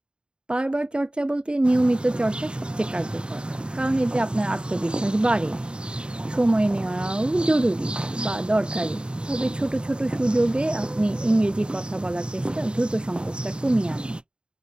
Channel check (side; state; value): left; late; 0.050 ms